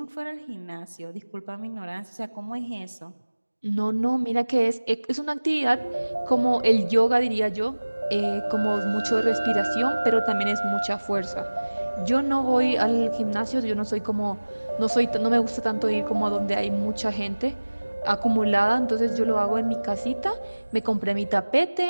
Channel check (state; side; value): inverted; both; correlation -1.00